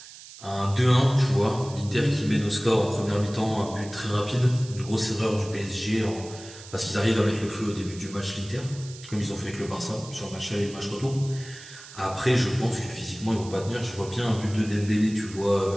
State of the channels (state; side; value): noise; right; hiss, 17 dB below the sound